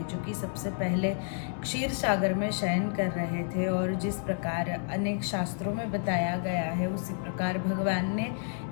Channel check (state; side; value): silent; right; 58 dB below the other